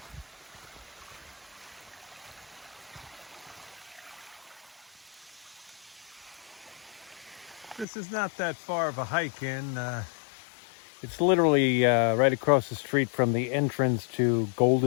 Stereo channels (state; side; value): drops out; right; at 7.9 s